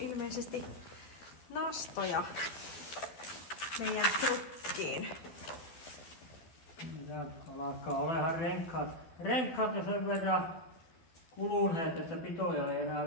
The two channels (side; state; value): right; late; 12 ms